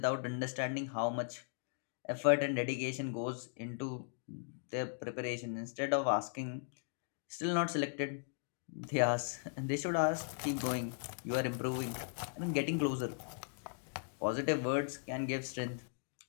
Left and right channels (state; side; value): silent; right; digital silence